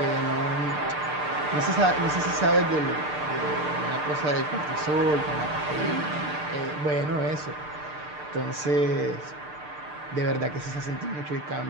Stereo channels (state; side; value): late; left; 6.7 ms